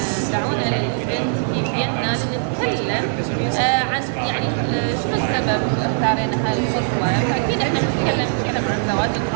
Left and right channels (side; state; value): left; silent; digital silence